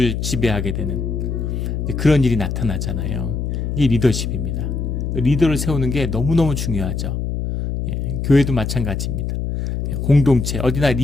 지배하게 되는 그런 일이 나타나잖아요. 이게 리더십입니다. 리더를 세우는 게 너무너무 중요하죠. 교회도 마찬가지입니다. 공동체, 어디나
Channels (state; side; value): noise; left; hum, 2 dB below the sound